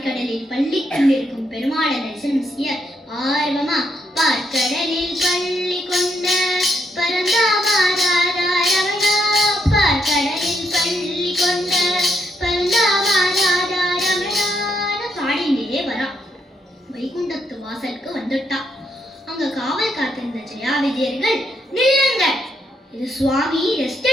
பள்ளி கொண்டிருக்கும் பெருமாளை தரிசனம் செய்ய ஆர்வமா பார்க்கடலில் பள்ளி கொண்ட பரந்தாமாதாரமணா, பார்க்கடலில் பள்ளி கொண்ட வைகுண்டத்து வாசலுக்கு வந்துட்டா. அங்க காவல் காத்திருந்த ஜெயா விஜயர்கள், நில்லுங்க, இது சுவாமி ரெஸ்ட்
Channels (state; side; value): normal; both; correlation 0.77